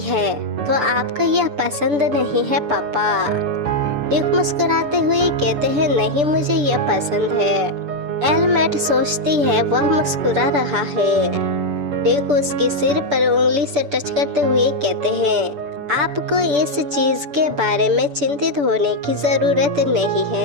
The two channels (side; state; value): left; late; 6.9 ms